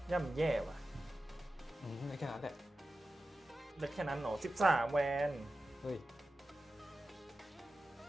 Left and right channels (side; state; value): both; normal; correlation 0.93